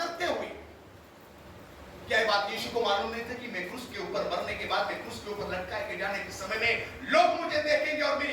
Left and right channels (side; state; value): both; identical; correlation 1.00